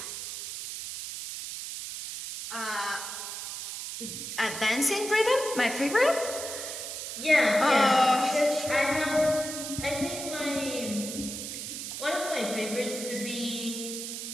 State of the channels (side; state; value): right; noise; hiss, 7 dB below the sound